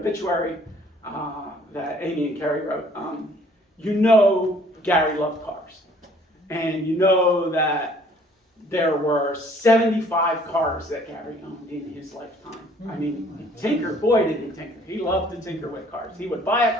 that Amy and Carrie wrote, Gary loved cars. And that there were 75 cars that Gary owned in his lifetime. I mean, tinker, boy did he tinker. He loved to tinker with cars. He would buy a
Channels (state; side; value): normal; both; correlation 0.57